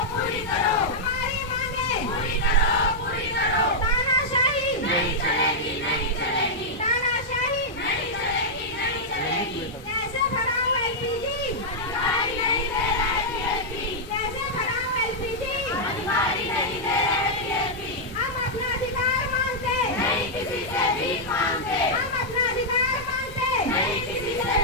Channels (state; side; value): normal; both; correlation -0.06